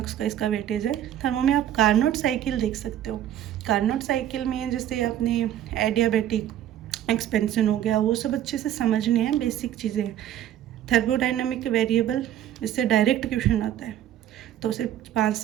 का इसका वेटेज है। थर्मो में आप कार्नोट साइकिल देख सकते हो। कार्नोट साइकिल में जैसे अपने एडियाबेटिक एक्सपेंशन हो गया, वो सब अच्छे से समझने हैं, बेसिक चीज़ें। थर्मोडाइनमिक वेरिएबल, इससे डायरेक्ट क्वेश्चन आता है, तो सिर्फ 5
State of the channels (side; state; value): left; quieter; 11.5 dB